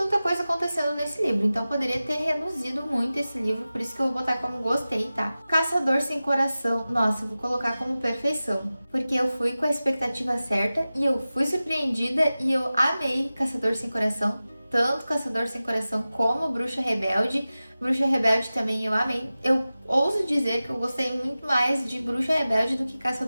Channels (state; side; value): inverted; both; correlation -0.96